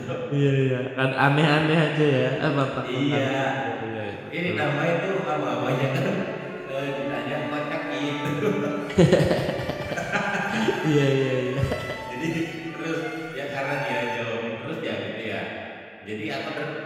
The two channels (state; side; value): identical; both; correlation 1.00